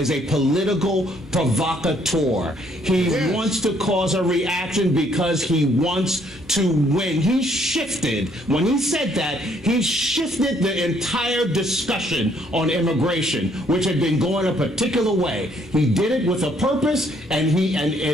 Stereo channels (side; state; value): both; normal; correlation 0.66